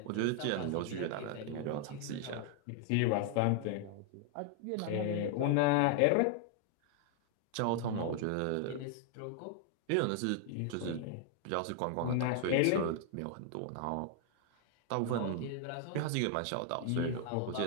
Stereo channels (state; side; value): different; both; correlation 0.00